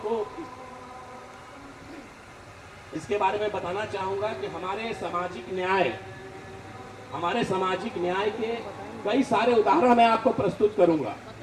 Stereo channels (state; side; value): identical; both; correlation 1.00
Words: को इसके बारे में बताना चाहूंगा कि हमारे सामाजिक न्याय के कई सारे उदाहरण मैं आपको प्रस्तुत करूंगा।